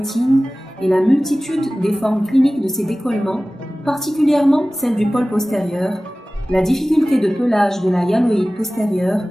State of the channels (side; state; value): both; normal; correlation 0.97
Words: et la multitude des formes cliniques de ces décollements, particulièrement celle du pôle postérieur, la difficulté de pelage de la hyaloïde postérieure,